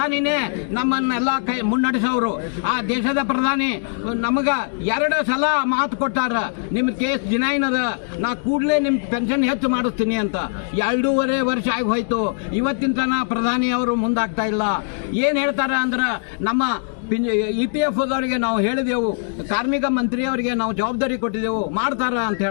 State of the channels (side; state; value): right; silent; digital silence